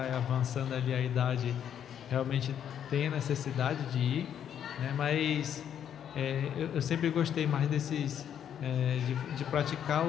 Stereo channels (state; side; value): quieter; right; 9.2 dB